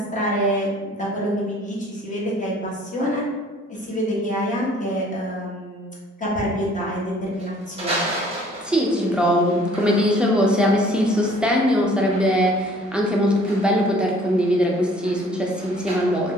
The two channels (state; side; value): normal; both; correlation 0.55